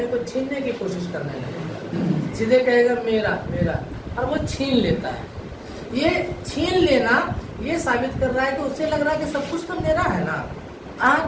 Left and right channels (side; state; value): both; identical; correlation 1.00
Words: को छीनने की कोशिश करने लगेगा, सीधे कहेगा मेरा मेरा, और वो छीन लेता है। ये छीन लेना ये साबित कर रहा है कि उससे लग रहा है कि सब कुछ तो मेरा है ना।